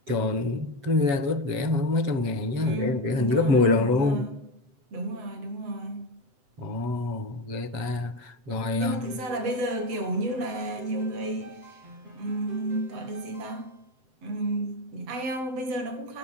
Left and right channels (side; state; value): left; late; 7.8 ms